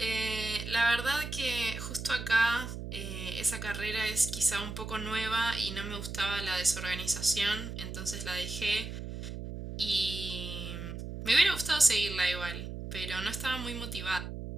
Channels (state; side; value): noise; right; hum, 7 dB below the sound